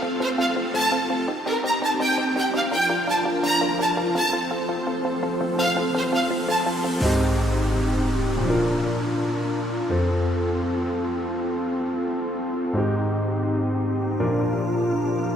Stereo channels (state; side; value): normal; both; correlation 0.73